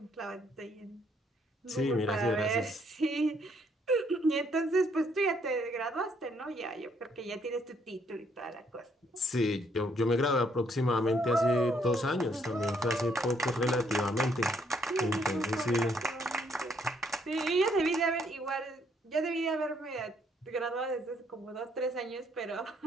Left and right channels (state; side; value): normal; both; correlation 0.69